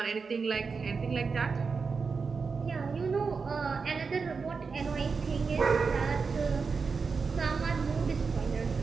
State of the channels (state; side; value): quieter; left; 5.0 dB